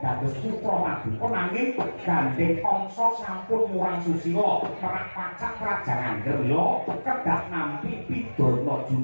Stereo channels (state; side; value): inverted; both; correlation -1.00